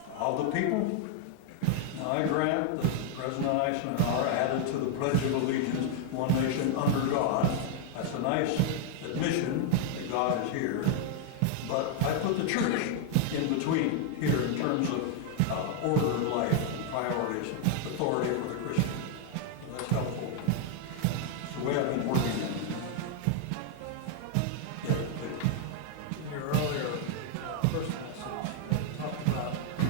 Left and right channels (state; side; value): different; both; correlation 0.00